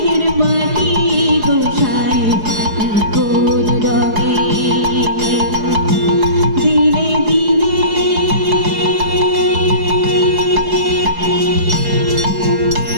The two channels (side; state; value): left; late; 4.7 ms